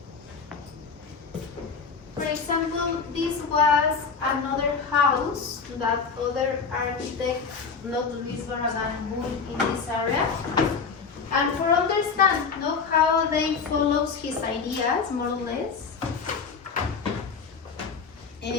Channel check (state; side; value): quieter; right; 5.4 dB